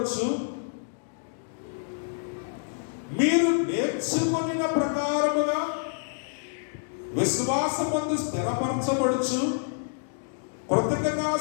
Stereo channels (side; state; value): right; silent; digital silence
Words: మీరు నేర్చుకొనిన ప్రకారముగా విశ్వాసమందు స్థిరపరచబడుచు,